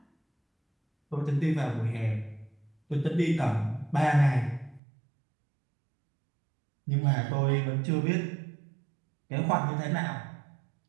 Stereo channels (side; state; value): left; drops out; at 4.8 s